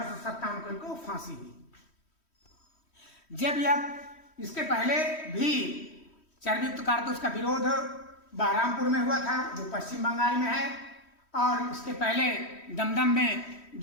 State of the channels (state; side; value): late; right; 3.1 ms